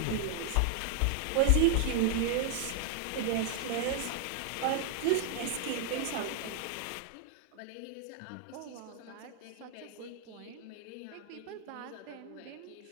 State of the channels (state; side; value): different; both; correlation 0.00